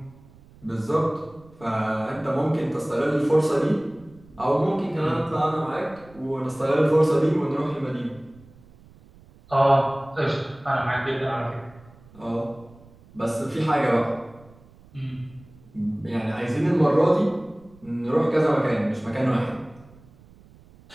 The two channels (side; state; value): right; noise; rumble, 25 dB below the sound